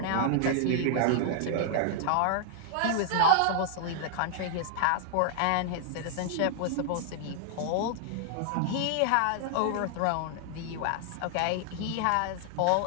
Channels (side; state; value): both; different; correlation 0.00